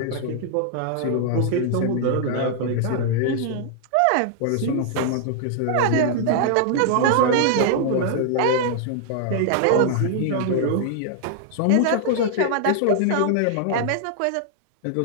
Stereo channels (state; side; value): different; both; correlation -0.01